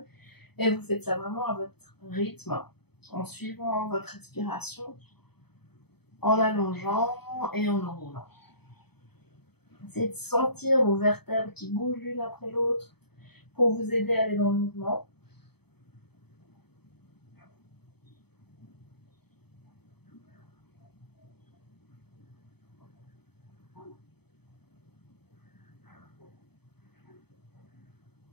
Et vous faites ça vraiment à votre rythme, en suivant votre expiration, en allongeant et en enroulant. Essayez de sentir vos vertèbres qui bougent l'une après l'autre pour vous aider à aller dans le mouvement.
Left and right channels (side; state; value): right; late; 0.97 ms